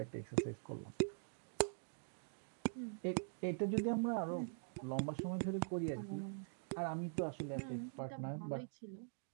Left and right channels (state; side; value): silent; left; digital silence